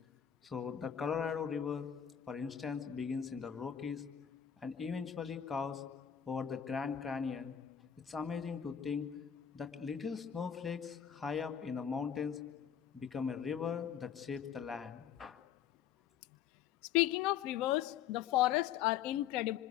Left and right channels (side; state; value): right; quieter; 8.9 dB